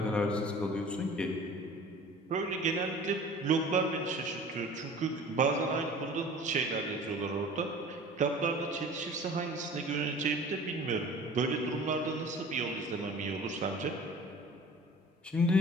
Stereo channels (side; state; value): both; normal; correlation 0.44